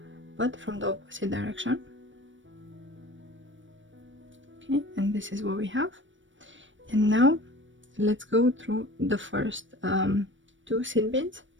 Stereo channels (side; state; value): left; late; 0.56 ms